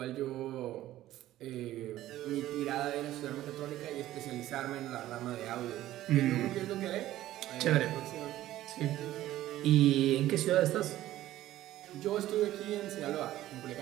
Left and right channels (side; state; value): left; quieter; 14.4 dB